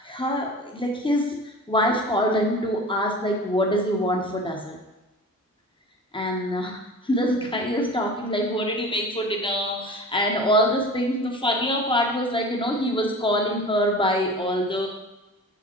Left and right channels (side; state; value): both; normal; correlation 0.37